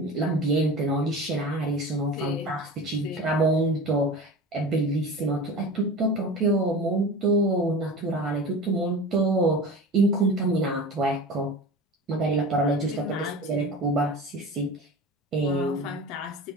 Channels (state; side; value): normal; both; correlation 0.33